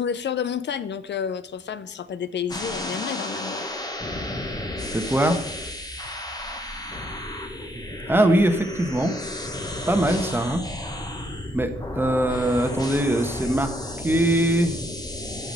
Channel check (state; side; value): normal; both; correlation 0.69